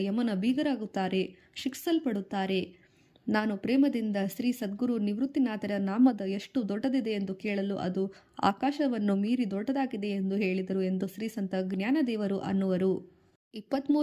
ಯಮನ ಬೀಗರಾಗುತ್ತಾರೆ, ಶಿಕ್ಷಿಸಲ್ಪಡುತ್ತಾರೆ. ನಾನು ಪ್ರೇಮದಿಂದ ಶ್ರೀ ಸದ್ಗುರು ನಿವೃತ್ತಿನಾಥರ ನಾಮದ ಎಷ್ಟು ದೊಡ್ಡದಿದೆ ಎಂದು ಕೇಳಲು ಅದು ಆಕಾಶವನ್ನು ಮೀರಿ ದೊಡ್ಡದಾಗಿದೆ ಎಂದು ಹೇಳಿದರು ಎಂದು ಶ್ರೀ ಸಂತ ಜ್ಞಾನದೇವರು ಅನ್ನುವರು.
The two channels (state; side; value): identical; both; correlation 1.00